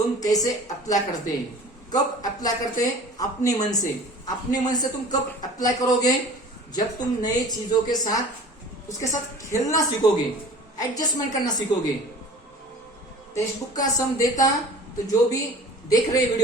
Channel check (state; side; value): normal; both; correlation 0.44